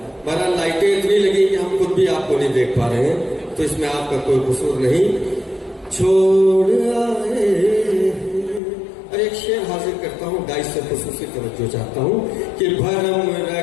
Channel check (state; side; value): drops out; right; at 8.6 s